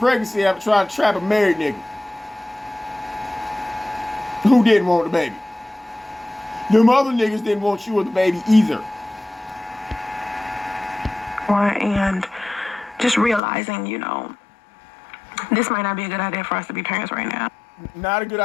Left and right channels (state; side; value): drops out; right; at 13.4 s